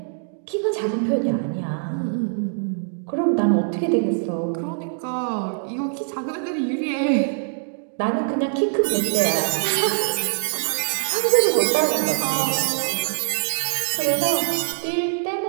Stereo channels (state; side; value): silent; left; digital silence